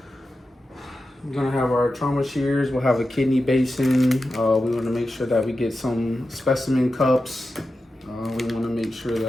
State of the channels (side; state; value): both; normal; correlation 0.91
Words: We're gonna have our trauma shears. We'll have a kidney basin. We want to make sure that we get some specimen cups. We want to make sure